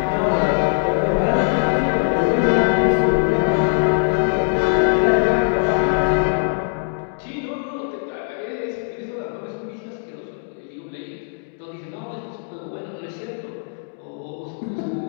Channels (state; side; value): silent; right; digital silence